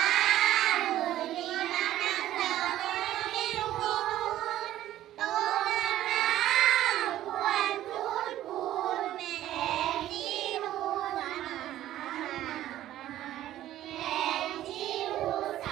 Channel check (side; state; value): left; quieter; 13.4 dB